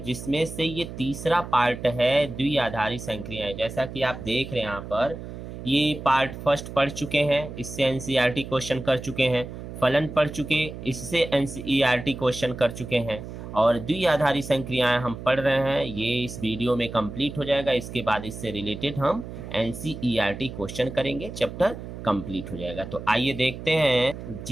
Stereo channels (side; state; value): right; noise; hum, 10 dB below the sound